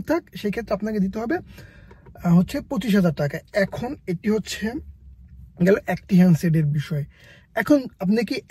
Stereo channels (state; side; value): identical; both; correlation 1.00